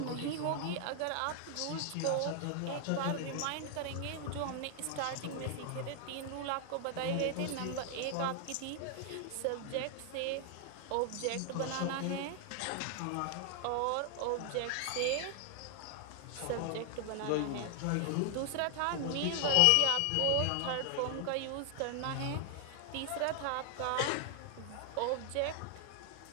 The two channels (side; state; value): both; different; correlation 0.00